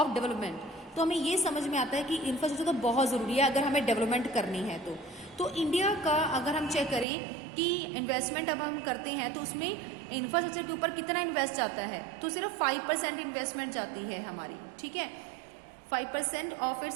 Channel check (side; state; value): left; drops out; at 7.1 s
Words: development. तो हमें ये समझ में आता है कि इंफ्रास्ट्रक्चर तो बहुत ज़रूरी है अगर हमें डेवलपमेंट करनी है। तो इंडिया का अगर हम चेक करें कि इन्वेस्टमेंट अब हम करते हैं तो उसमें इंफ्रास्ट्रक्चर के ऊपर कितना इन्वेस्ट जाता है, तो सिर्फ 5% इन्वेस्टमेंट जाती है हमारी, ठीक है, 5% of